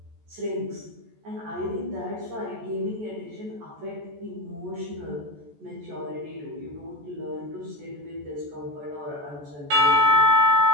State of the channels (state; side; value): late; left; 14 ms